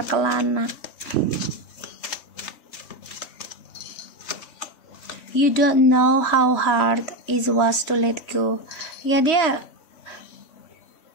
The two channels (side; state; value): right; late; 3.5 ms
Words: You don't know how hard it was to let go Ya dia